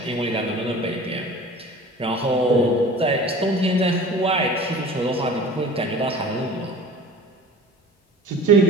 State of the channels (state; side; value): normal; both; correlation 0.42